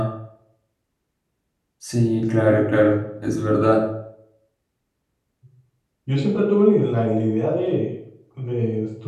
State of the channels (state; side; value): identical; both; correlation 1.00